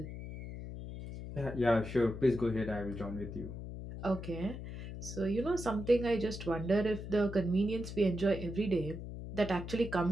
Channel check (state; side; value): noise; left; hum, 9 dB below the sound